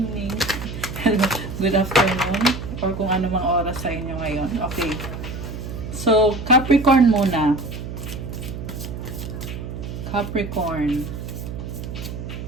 Good afternoon. Or kung ano mang oras sa inyo ngayon. Okay. So, Capricorn muna. Capricorn.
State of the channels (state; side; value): noise; right; hum, 8 dB below the sound